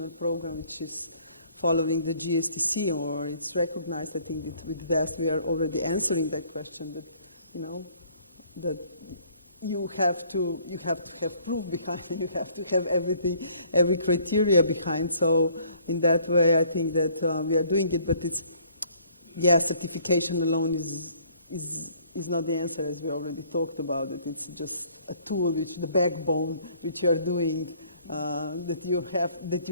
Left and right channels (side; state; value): both; inverted; correlation -0.60